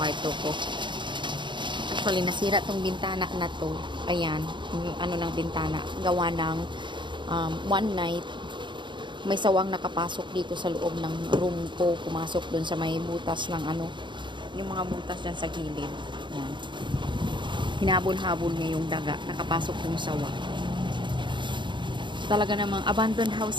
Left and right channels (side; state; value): left; late; 0.23 ms